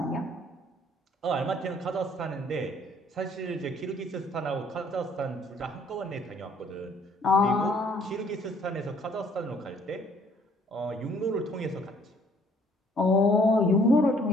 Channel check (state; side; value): normal; both; correlation 0.61